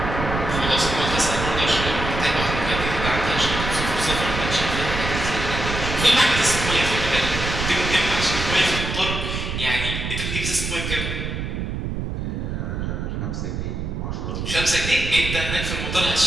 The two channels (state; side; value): noise; right; rumble, 4 dB below the sound